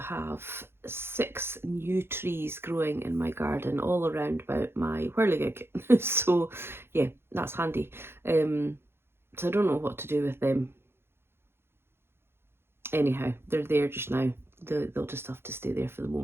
6 new trees growing in my garden all around about my whirligig. So yeah, that's handy. So I don't know what to do with them. Anyhow, they're there just now. They'll just have to stay there for the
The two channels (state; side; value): late; left; 0.11 ms